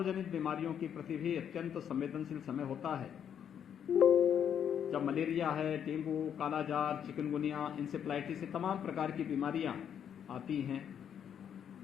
बीमारियों की प्रति भी अत्यंत संवेदनशील समय होता है। जब मलेरिया है, डेंगू, कालाजार, चिकनगुनिया, इंसेफ्लाइटिस, तमाम प्रकार की बीमारियां आती हैं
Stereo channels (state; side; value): quieter; right; 8.7 dB